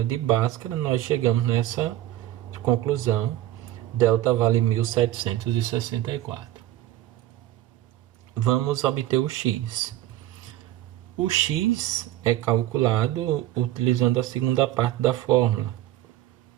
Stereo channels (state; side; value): quieter; left; 14.4 dB